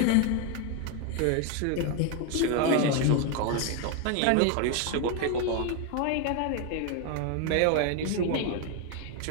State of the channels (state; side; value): different; both; correlation 0.01